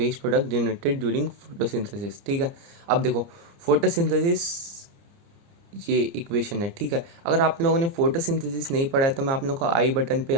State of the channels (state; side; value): late; left; 29 ms